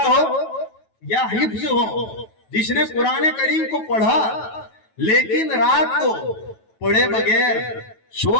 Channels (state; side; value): late; right; 9.2 ms